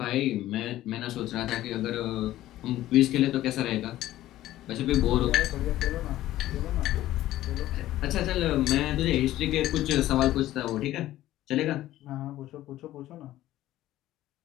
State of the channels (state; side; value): quieter; right; 14.5 dB